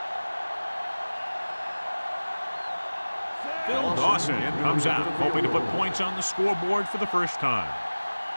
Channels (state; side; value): inverted; both; correlation -1.00